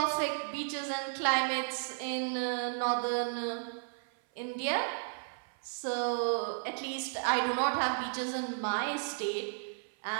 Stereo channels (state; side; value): silent; left; 55 dB below the other